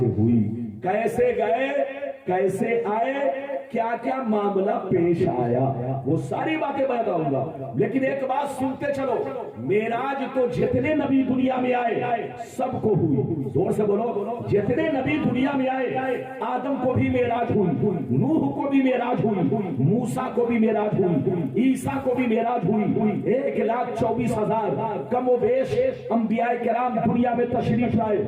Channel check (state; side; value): identical; both; correlation 1.00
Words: ہوئی، کیسے گئے، کیسے آئے، کیا کیا معاملہ پیش آیا، وہ ساری باتیں بتاؤں گا۔ لیکن ایک بات سنتے چلو، معراج تو جتنے نبی دنیا میں آئے سب کو ہوئی، زور سے بولو، جتنے نبی دنیا میں آئے آدم کو بھی معراج ہوئی، نوح کو بھی معراج ہوئی، موسیٰ کو بھی معراج ہوئی، عیسیٰ کو بھی معراج ہوئی، 1,24,000 کم و بیش انبیاء کرام دنیا میں تشریف